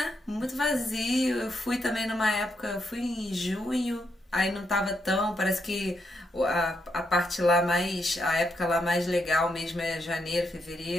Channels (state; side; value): normal; both; correlation 0.80